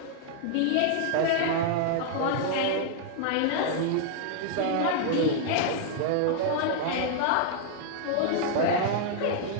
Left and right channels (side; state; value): both; different; correlation -0.01